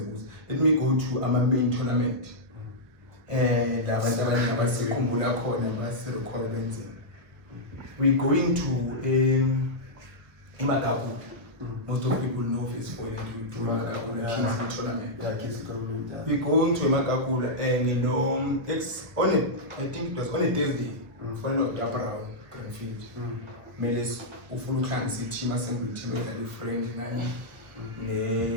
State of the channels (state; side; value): late; left; 1.3 ms